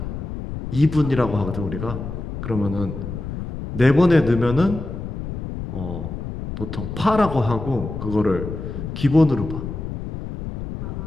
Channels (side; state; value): left; noise; rumble, 7 dB below the sound